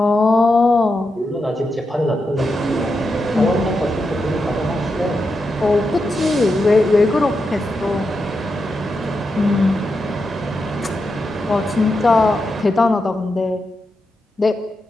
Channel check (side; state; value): both; normal; correlation 0.87